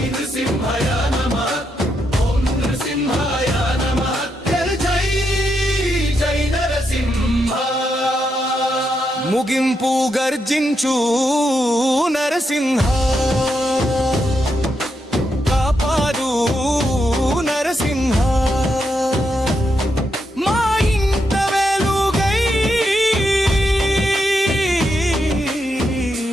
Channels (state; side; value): normal; both; correlation 0.82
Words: నృసింహాయ నమః, ఓం నృసింహాయ నమః. ముగింపు గర్జించు నరసింహ, కాపాడు నరసింహ. మా ఇంట వెలుగై